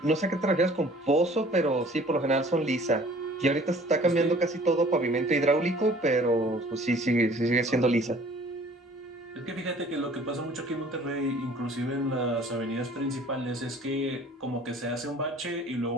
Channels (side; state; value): both; normal; correlation 0.52